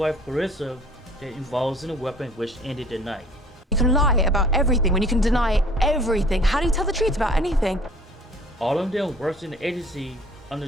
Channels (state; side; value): normal; both; correlation 0.52